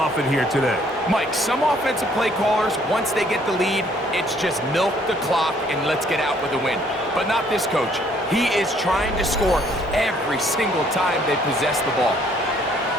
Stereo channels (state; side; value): normal; both; correlation 0.63